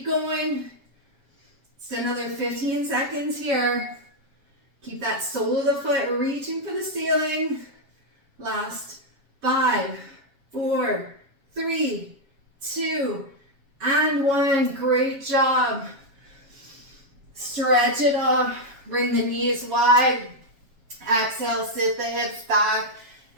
going. It's another 15 seconds here. Keep that sole of the foot reaching for the ceiling. Last 5, 4, 3, 2, and 1. Great job. Stretch it off. Bring the knees wide. Exhale, sit the hips back.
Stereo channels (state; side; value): late; left; 7.3 ms